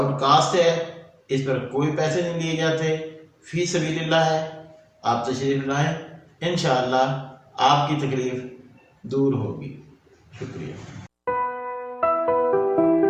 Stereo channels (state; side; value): identical; both; correlation 1.00